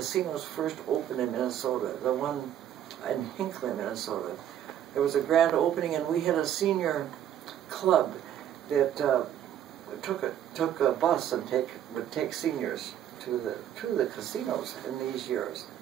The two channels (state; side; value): quieter; left; 10.7 dB